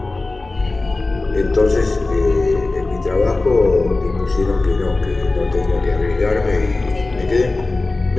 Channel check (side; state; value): right; quieter; 3.3 dB